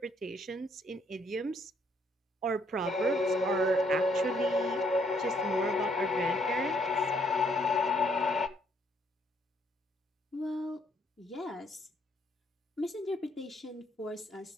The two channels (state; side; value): normal; both; correlation 0.69